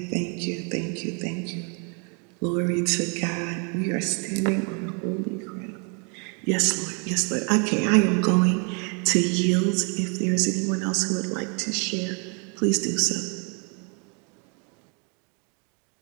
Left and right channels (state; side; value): quieter; left; 36.6 dB